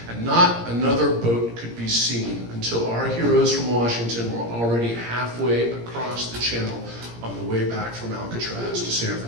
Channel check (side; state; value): left; late; 17 ms